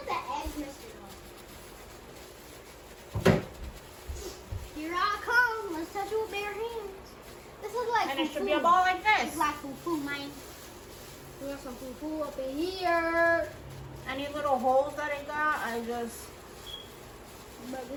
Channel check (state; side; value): identical; both; correlation 1.00